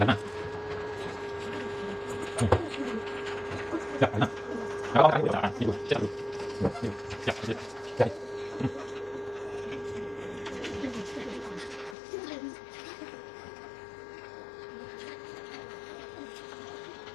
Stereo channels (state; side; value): drops out; right; at 12.0 s